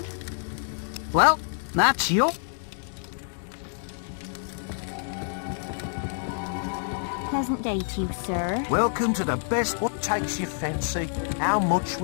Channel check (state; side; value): silent; right; 60 dB below the other